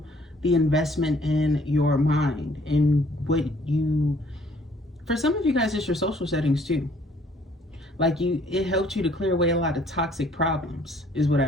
the investment in your mind and what you, for some of you guys, it's your social settings too. Like it helped you to clear away a lot of toxic problems, is what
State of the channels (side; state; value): both; normal; correlation 0.60